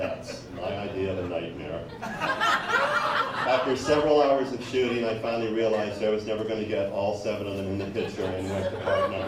My idea of a nightmare. After several hours of shooting, I finally realized I was never going to get all 7 of them in the picture and went to part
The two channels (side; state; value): both; identical; correlation 1.00